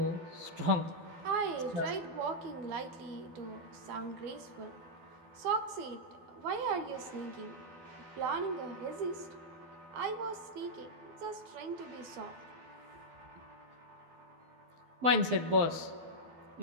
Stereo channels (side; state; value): left; late; 12 ms